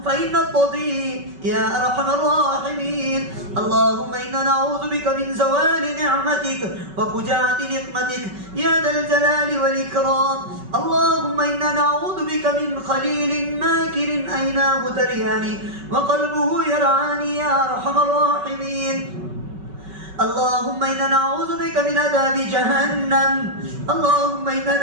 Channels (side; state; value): left; late; 5.3 ms